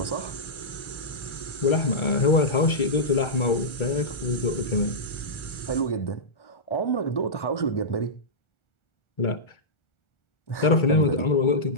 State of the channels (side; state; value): right; late; 1.4 ms